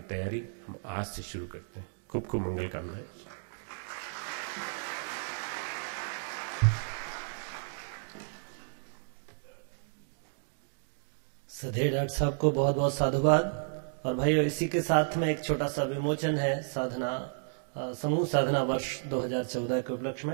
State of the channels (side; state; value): left; silent; digital silence